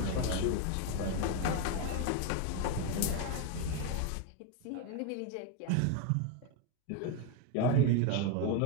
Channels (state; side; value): different; both; correlation 0.02